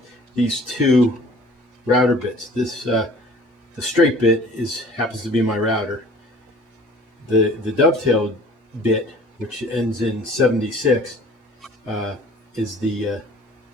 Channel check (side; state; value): both; normal; correlation 0.49